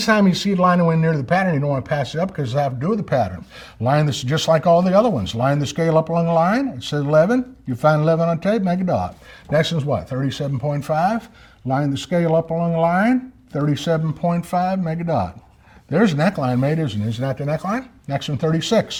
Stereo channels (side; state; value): both; identical; correlation 1.00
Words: you see it line away near the pattern, you don't want to pass it up because it has to do with the pattern. Line this just like all the other ones. Line the scale up along the line. It says 11. You find 11 on tape, make a dot. Next is what? 37.5. Line the scale up along the line. 37.5, make a dot. There's a neckline made, isn't it? Isn't that the neckline? Next one,